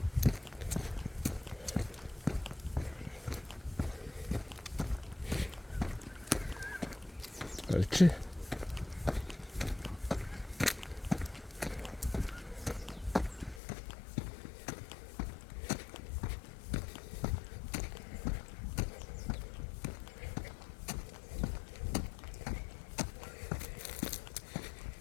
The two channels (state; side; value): drops out; right; at 13.6 s